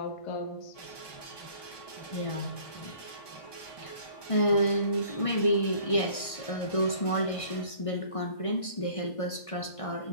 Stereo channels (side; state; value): right; late; 1.6 ms